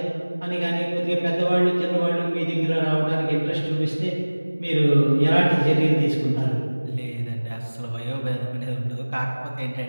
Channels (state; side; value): inverted; both; correlation -1.00